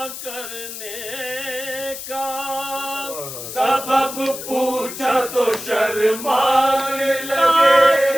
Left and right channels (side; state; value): left; noise; hiss, 9 dB below the sound